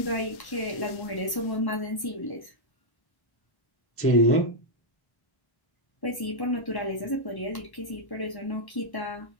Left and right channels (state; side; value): late; right; 1.1 ms